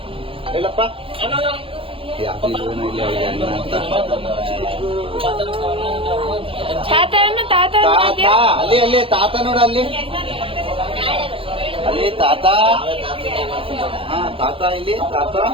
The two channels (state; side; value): late; left; 0.26 ms